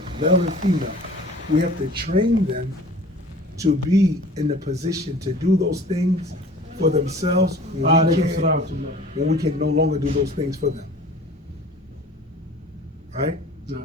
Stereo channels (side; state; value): both; normal; correlation 0.45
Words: male and female. We have to train them to be in the position to do those things for themselves when we can no longer do those things for them. Right? No.